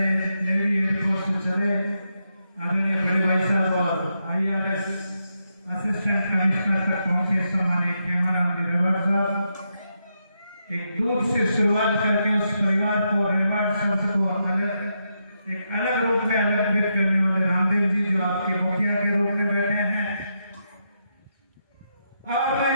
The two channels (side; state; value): both; inverted; correlation -0.82